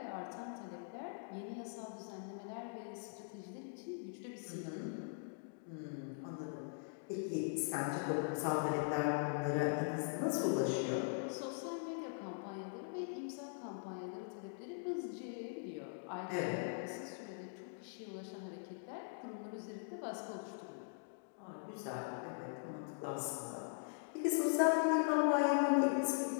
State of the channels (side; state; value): right; silent; digital silence